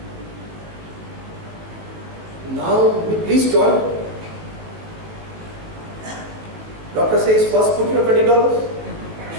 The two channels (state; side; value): late; left; 18 ms